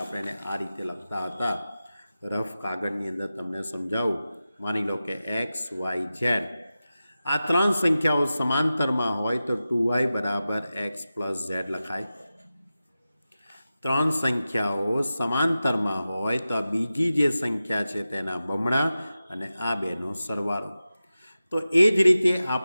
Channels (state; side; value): inverted; both; correlation -0.94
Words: આપણે એને આ રીતે લખતા હતા. રફ કાગળની અંદર તમને સમજાવું. માની લો કે X, Y, Z. આ ત્રણ સંખ્યાઓ સમાંતરમાં હોય તો 2y = x + z લખાય. ત્રણ સંખ્યાઓ સમાંતરમાં હોય તો આ બીજી જે સંખ્યા છે તેના બમણા અને આ બેનો સરવાળો. તો એ જ રીતે